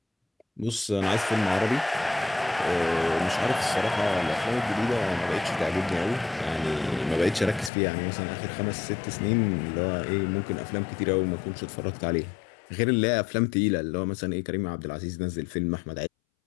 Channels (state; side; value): drops out; right; at 7.7 s